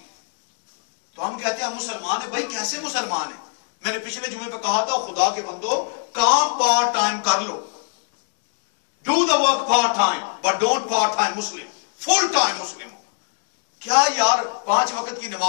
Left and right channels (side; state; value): right; silent; digital silence